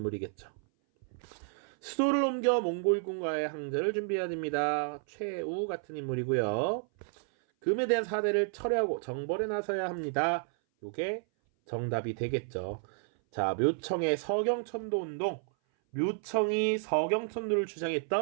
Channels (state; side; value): silent; left; 57 dB below the other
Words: 수도를 옮겨 몽골군과의 항전을 준비해야 됩니다. 최우 같은 인물이고요. 금에 대한 사대를 철회하고 정벌에 나서야 합니다. 요게 정답이 되겠죠. 자, 묘청의 서경천도운동, 묘청이 서경천도를